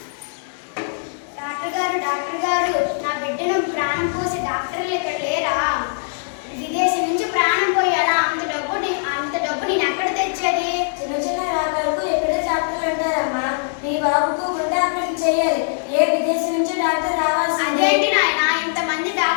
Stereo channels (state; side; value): silent; right; digital silence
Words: డాక్టర్ గారు నా బిడ్డను ప్రాణం పోసి డాక్టర్లు ఇక్కడ లేరా? విదేశీ నుంచి ప్రాణం పోయాలా? అంత డబ్బు నేను ఎక్కడ తెచ్చేది? చిన్న రోగాలకు ఎక్కడే డాక్టర్లు అంటారమ్మా. నీ బాబుకు గుండె ఆపరేషన్ చేయాలి. ఏ విదేశీ నుంచి డాక్టర్ రావాల్సిందే. అదేంటి నాయన ఇంతమంది